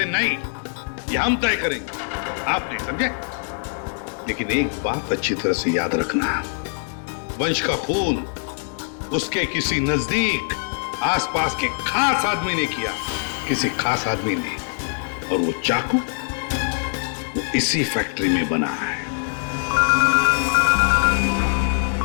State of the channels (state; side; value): silent; right; digital silence